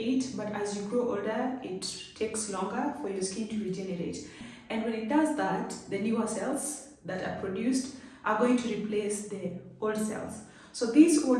but as you grow older it takes longer for your skin to regenerate. And when it does that, the newer cells that are produced are going to replace the old cells. So these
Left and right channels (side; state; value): both; identical; correlation 1.00